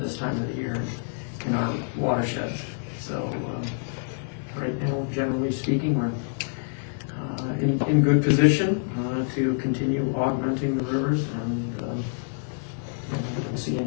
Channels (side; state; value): right; silent; digital silence